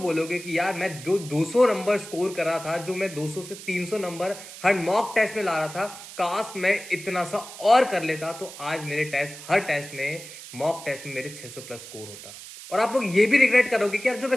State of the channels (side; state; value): right; noise; hiss, 14 dB below the sound